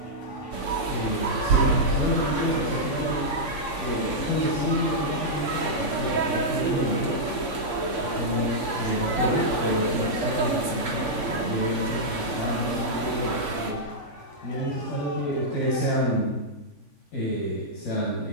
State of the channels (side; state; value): right; late; 3.5 ms